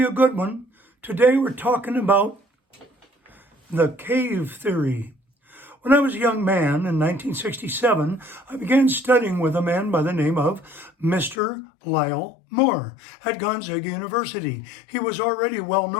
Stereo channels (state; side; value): drops out; right; at 11.4 s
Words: a good one. Today we're talking about the cave theory. When I was a young man in 1967, I began studying with a man by the name of Mr. Lyle Moore at Gonzaga University. He was already well